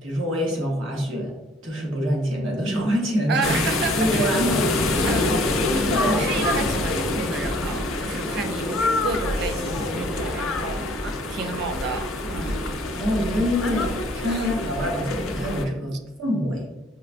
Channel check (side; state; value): both; normal; correlation 0.58